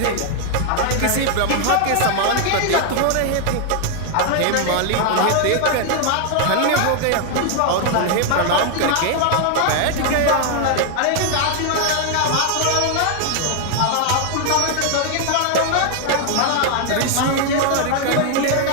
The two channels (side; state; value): both; different; correlation 0.00